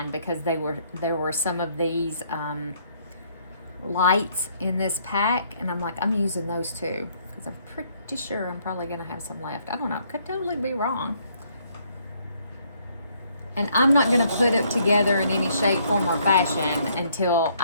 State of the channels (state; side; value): inverted; both; correlation -0.67